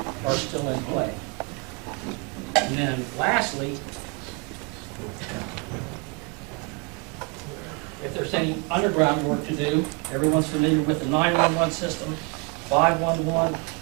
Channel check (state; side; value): quieter; left; 30.7 dB